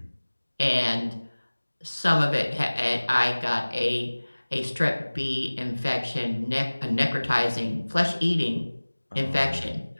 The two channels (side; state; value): both; inverted; correlation -1.00